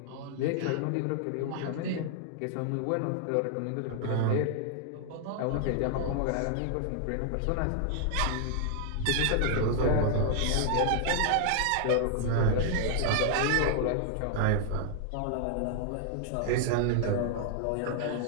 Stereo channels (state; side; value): different; both; correlation 0.00